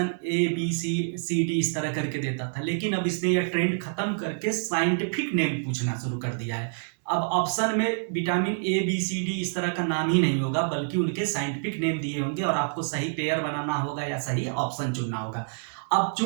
A B C D इस तरह करके देता था। लेकिन अब इसने यह ट्रेंड खत्म करके साइंटिफिक नेम पूछना शुरू कर दिया है। अब ऑप्शन में vitamin A B C D इस तरह का नाम ही नहीं होगा, बल्कि उनके साइंटिफिक नेम दिए होंगे और आपको सही पेयर बनाना होगा या सही ऑप्शन चुनना होगा। अब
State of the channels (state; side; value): silent; left; digital silence